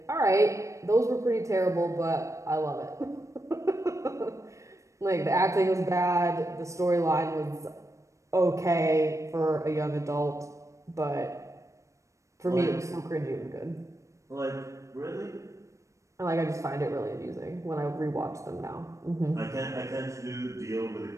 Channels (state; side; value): late; left; 0.15 ms